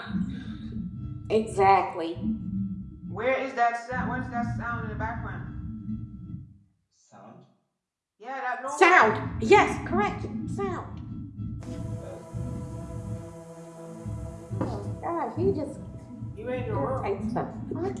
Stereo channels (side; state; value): both; identical; correlation 1.00